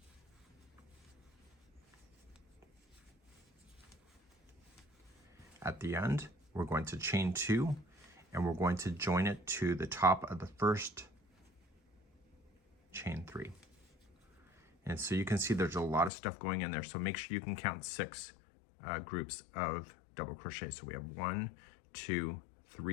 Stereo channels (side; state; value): right; drops out; at 16.1 s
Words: At the end, we're going to chain 2, and we're going to join it to the top of the first chain 3. And so you can see there's a lot of stuff going in there, so make sure you can count 6 groups of double crochet. So we have 1, 2,